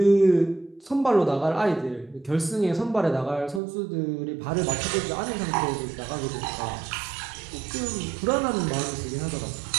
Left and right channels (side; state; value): left; drops out; at 3.6 s